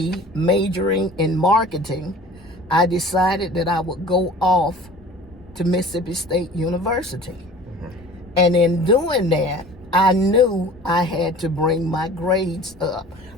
majoring in marketing, I decided that I would go off to Mississippi State University. Mm-hmm. And in doing that, I knew I had to bring my grades up.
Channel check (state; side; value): normal; both; correlation 0.44